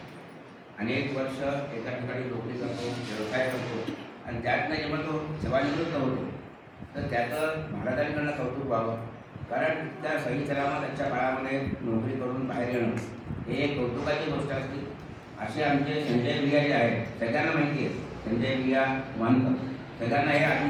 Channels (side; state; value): both; identical; correlation 1.00